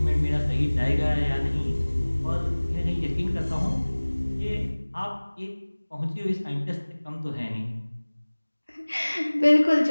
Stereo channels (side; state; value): both; inverted; correlation -1.00